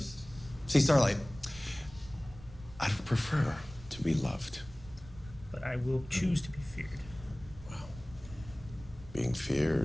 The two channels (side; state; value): right; noise; rumble, 17 dB below the sound